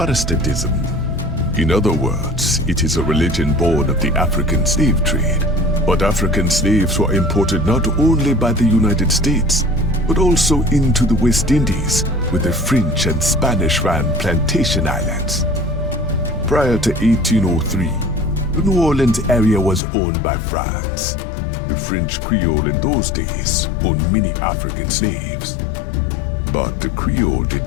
In other words, it is a religion born of the African slave trade. But African slaves were imported not only by the United States, but also into the West Indies, where the French and Spanish ran plantation islands. Prior to 1803, the New Orleans area was owned by France. The French Creole in those days owned many African slaves. But the Creole did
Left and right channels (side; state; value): right; drops out; at 19.8 s